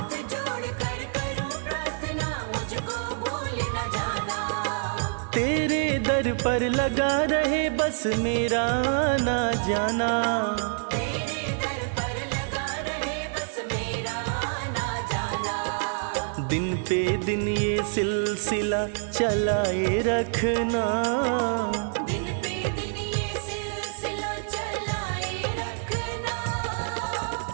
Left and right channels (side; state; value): left; silent; 59 dB below the other